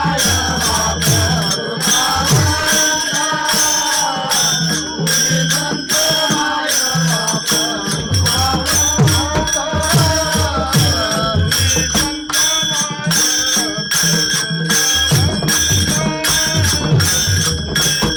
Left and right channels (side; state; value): both; identical; correlation 1.00